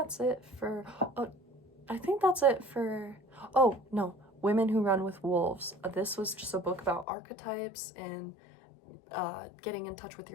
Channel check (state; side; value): drops out; right; at 7.1 s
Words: it for, oh no, Women Who Run with Wolves. This was just a book about archetypes and getting in touch with